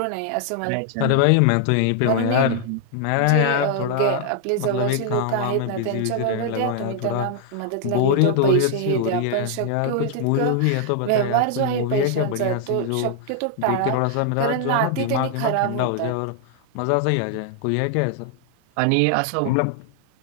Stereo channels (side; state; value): both; different; correlation 0.00